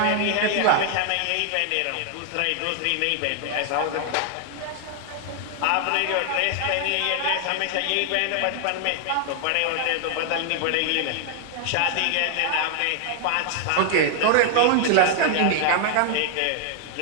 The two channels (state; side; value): different; both; correlation 0.00